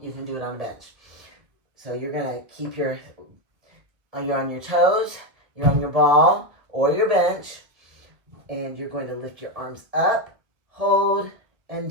you can do it on a bench. So you're going to keep you're on your toes, you're on your ball or your bench, and you're going to lift your arms up, hold, and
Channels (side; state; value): left; late; 1.5 ms